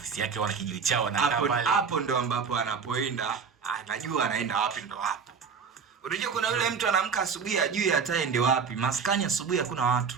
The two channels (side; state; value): left; quieter; 6.0 dB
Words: yake, wana kijiji chao na pale. Hapo ndo ambapo anapoenda, anajua anaenda wapi ndo hapo. Unajua kuna yule mtu anaamka asubuhi hajui hata aende wapi. Maskani asubuhi hakuna